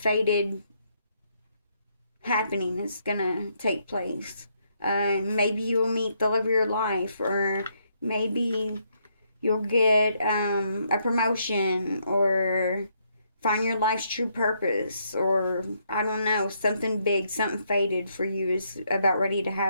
happening is gonna take place. Maybe you'll meet the love of your life, or maybe you'll get a promotion, or find your life's true purpose, or I don't know, something big, something fated for you is about ready to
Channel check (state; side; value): inverted; both; correlation -0.74